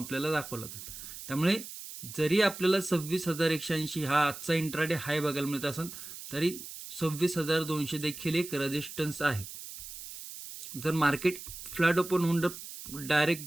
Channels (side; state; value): right; noise; hiss, 11 dB below the sound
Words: दाखवला होता. त्यामुळे जरी आपल्याला 26,180 हा आजचा इंट्राडे हाय बघायला मिळत असेल, तरी 26,200 देखील एक रेजिस्टन्स आहे. जर मार्केट फ्लॅट ओपन होऊन